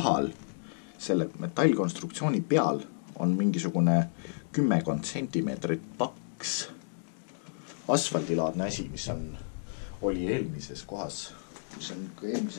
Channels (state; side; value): silent; right; digital silence